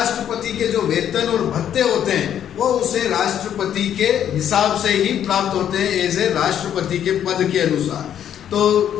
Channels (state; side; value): quieter; right; 9.8 dB